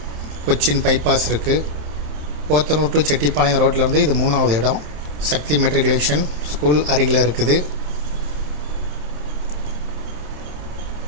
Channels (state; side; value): late; left; 27 ms